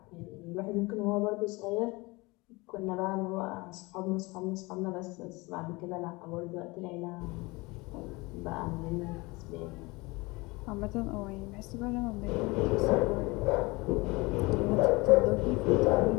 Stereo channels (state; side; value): quieter; right; 24.0 dB